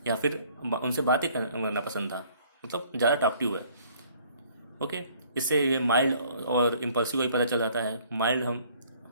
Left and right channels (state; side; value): inverted; both; correlation -0.59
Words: या फिर उनसे बातें करना पसंद था, मतलब ज़्यादा टॉकटिव है। ओके, इससे ये माइल्ड और इम्पल्सिव का ही पता चल जाता है।